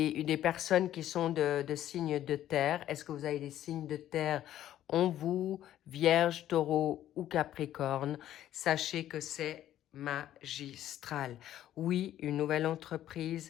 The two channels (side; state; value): right; quieter; 12.2 dB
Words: personnes qui sont de signes de terre. Est-ce que vous avez des signes de terre en vous, Vierge, Taureau ou Capricorne? Sachez que c'est magistral. Oui, une nouvelle